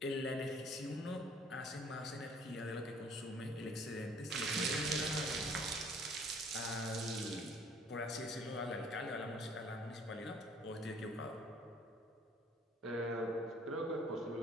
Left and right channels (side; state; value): both; normal; correlation 0.56